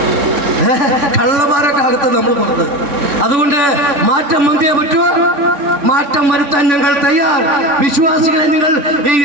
കള്ളന്മാരൊക്കെ അകത്ത് നമ്മൾ പുറത്ത്. അതുകൊണ്ട് മാറ്റം വന്നേ പറ്റുമോ? മാറ്റം വരുത്താൻ ഞങ്ങൾ തയ്യാർ. വിശ്വാസികളെ, നിങ്ങൾ ഈ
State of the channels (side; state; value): left; late; 3.5 ms